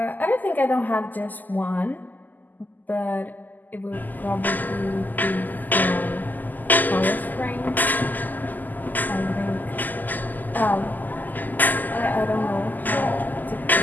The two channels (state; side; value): late; right; 0.085 ms